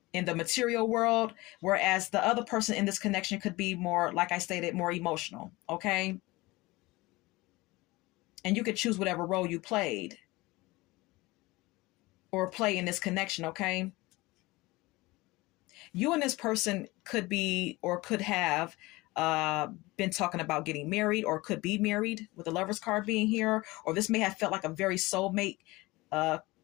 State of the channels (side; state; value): right; quieter; 21.3 dB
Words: in the material world, whereas the other person in this connection could be more, like I stated, more emotional, okay? And you could choose whatever role you played or play in this connection, okay? You and this person could be or could have been talking about getting married, or could be married with the Lover's card being here, or this may have felt like a very soulmate